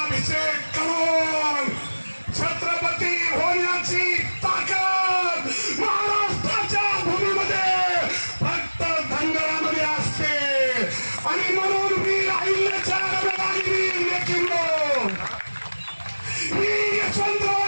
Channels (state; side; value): inverted; both; correlation -1.00